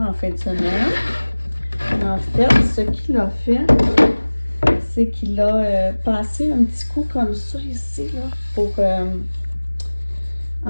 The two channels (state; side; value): inverted; both; correlation -1.00